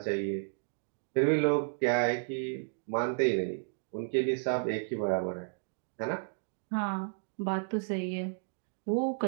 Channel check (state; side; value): silent; left; digital silence